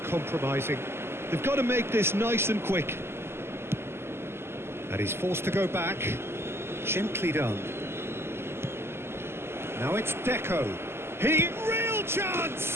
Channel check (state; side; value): late; left; 0.12 ms